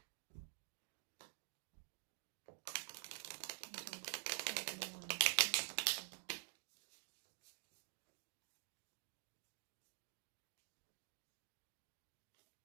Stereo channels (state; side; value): silent; left; digital silence